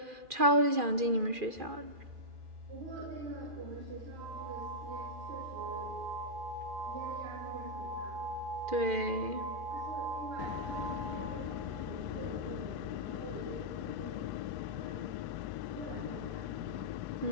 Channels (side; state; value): left; late; 2.4 ms